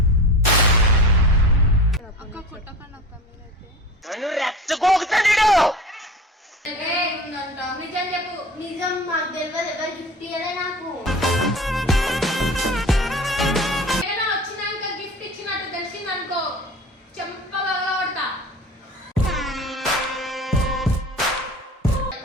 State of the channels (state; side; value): normal; both; correlation 0.36